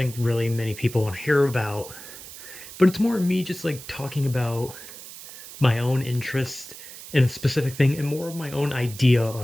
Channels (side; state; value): right; noise; hiss, 14 dB below the sound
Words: really many people want to hear about, but it's more me just like talking about my own interest in a specific thing and more of my own idea